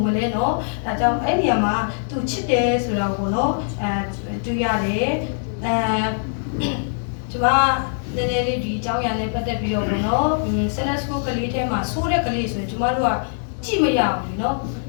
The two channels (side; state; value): right; silent; digital silence